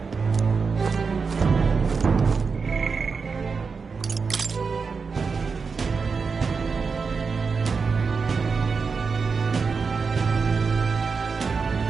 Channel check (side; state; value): left; quieter; 5.1 dB